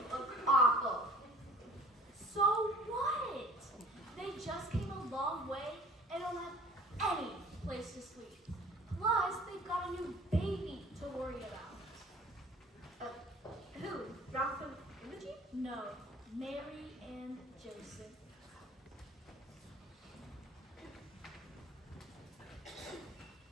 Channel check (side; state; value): both; normal; correlation 0.49